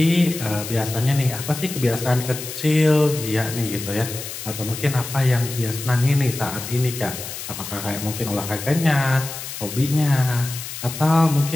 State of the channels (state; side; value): noise; left; hiss, 9 dB below the sound